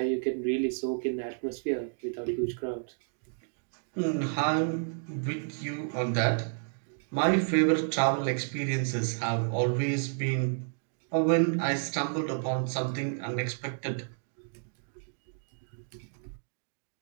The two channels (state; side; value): silent; left; digital silence